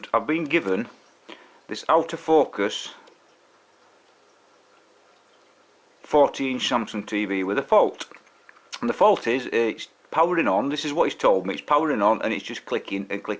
I've been given this out of focus 40-inch Samsung TV with a fault. And the fault is it's powering on. This is what he's told me. It's powering on and it's just clicking and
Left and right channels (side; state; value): both; identical; correlation 1.00